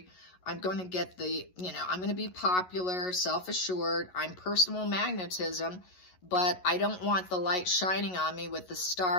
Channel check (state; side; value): late; right; 11 ms